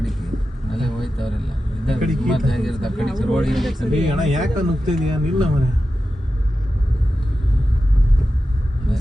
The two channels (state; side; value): normal; both; correlation 0.92